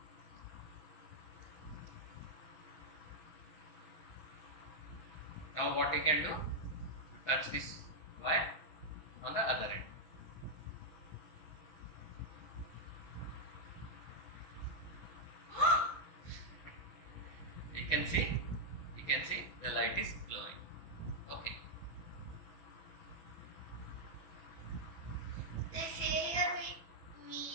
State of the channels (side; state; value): right; late; 6.2 ms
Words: Now what you can do, you touch this wire on the other end. can see the light is glowing. Okay. They say here we